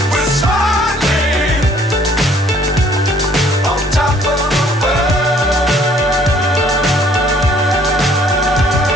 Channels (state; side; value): normal; both; correlation 0.60